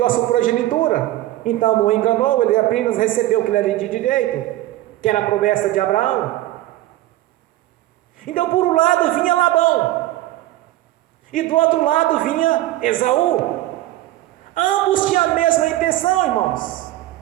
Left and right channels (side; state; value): left; quieter; 15.6 dB